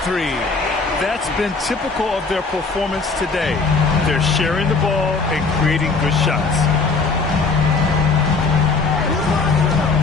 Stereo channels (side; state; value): right; quieter; 4.2 dB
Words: 3. That's been typical of their performance today. They're sharing the ball and creating good shots.